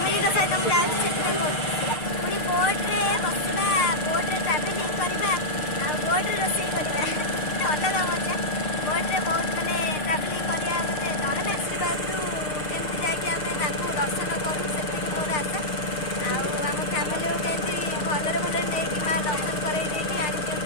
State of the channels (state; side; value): late; right; 6.6 ms